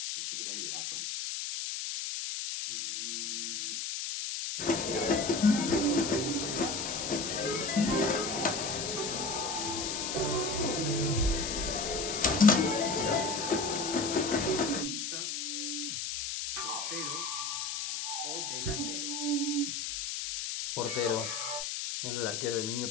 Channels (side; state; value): left; noise; hiss, 3 dB below the sound